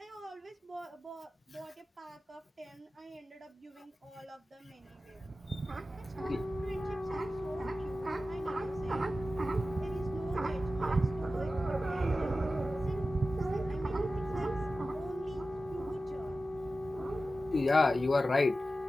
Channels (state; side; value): normal; both; correlation 0.94